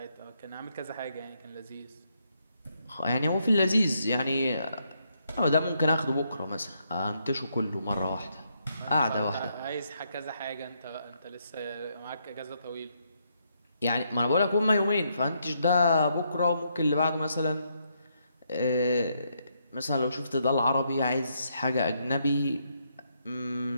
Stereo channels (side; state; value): both; inverted; correlation -0.77